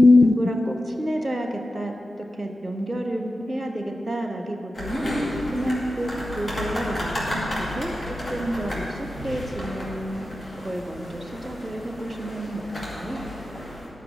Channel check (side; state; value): both; normal; correlation 0.92